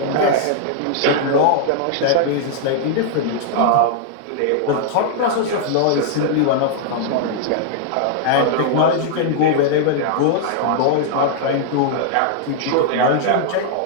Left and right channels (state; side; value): different; both; correlation -0.01